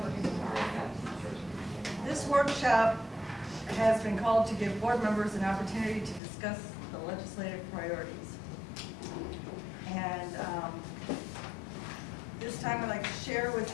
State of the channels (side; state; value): right; drops out; at 6.2 s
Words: This workshop has been called to give board members an opportunity to discuss the legislative priorities. And this time I'd like to share